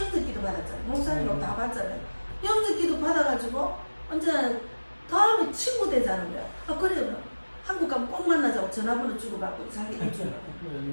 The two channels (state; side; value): inverted; both; correlation -1.00